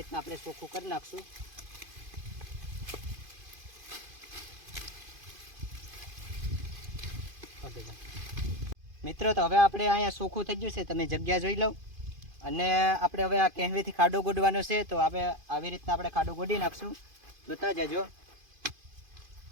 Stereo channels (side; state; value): left; late; 2.5 ms